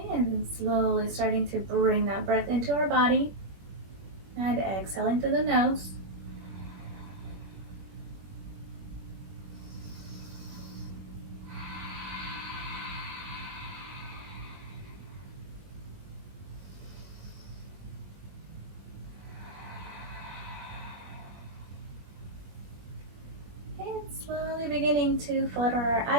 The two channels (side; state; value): left; late; 21 ms